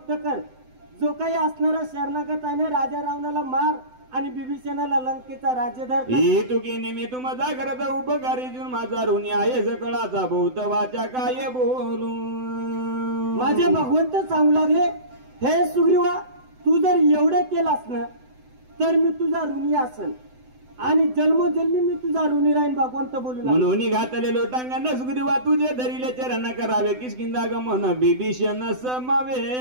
कर. जो काही असणारा शरणागत आहे ना, राजा रावणाला मार आणि बिभीषणाला लंकेचा राज्यधार कर. ही तुकी नेहमी तू माझा करत उपकारी जून माझा ऋणी आहे सकळाचा बहुत वाचा काय बोलू. माझे भगवंत सांगू लागले, हे सुग्रीवा, तू जर एवढं केलास ना तर मी तुझा ऋणी असेल आणि जन्मोजन्मी मी तुझा ऋणी राहीन. भगवंत बोलू लागले, म्हणून घातले लोटांगण सुग्रीवा तुझे धरिले चरण करावे किष्किंदा गमन बिभीषण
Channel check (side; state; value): left; late; 7.9 ms